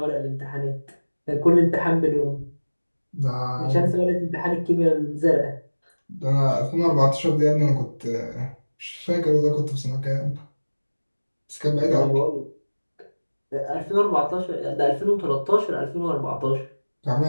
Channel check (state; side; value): inverted; both; correlation -1.00